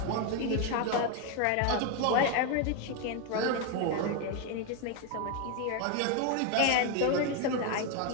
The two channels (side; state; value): both; different; correlation 0.01